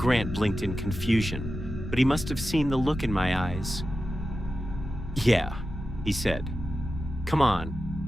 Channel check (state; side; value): normal; both; correlation 0.92